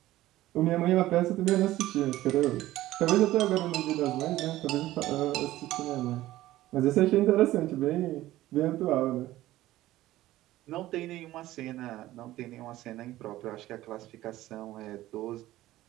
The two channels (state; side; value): quieter; left; 15.7 dB